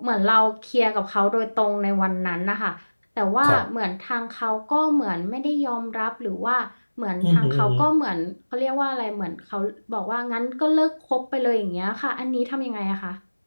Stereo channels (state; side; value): inverted; both; correlation -1.00